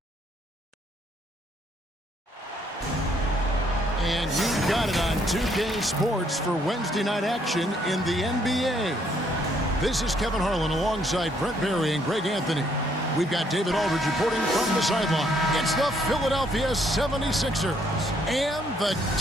And you got it on 2K Sports for Wednesday night action in the NBA. This is Kevin Harlan alongside Brent Barry and Greg Anthony. We've got David Aldridge reporting from the sideline. It's the Philadelphia 76ers and the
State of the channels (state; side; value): normal; both; correlation 0.69